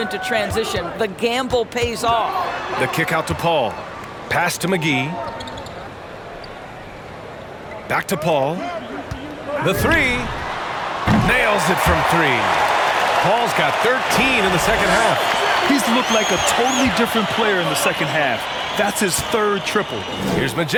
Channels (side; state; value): both; identical; correlation 1.00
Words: transition. The gamble pays off. The kick out to Paul. Pass to McGee. Back to Paul. The 3. Nails it from 3. Paul's got 13 in the second half. He's looked like a totally different player in the second half. That's his 3rd triple. Here's